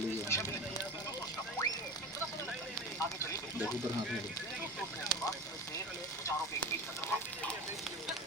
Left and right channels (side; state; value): both; normal; correlation 0.29